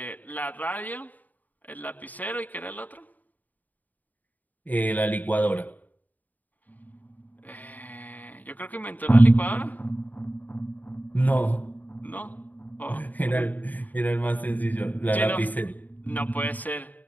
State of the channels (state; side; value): late; right; 0.081 ms